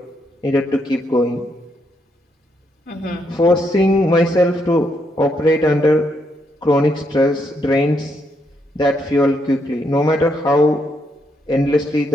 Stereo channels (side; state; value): both; normal; correlation 0.77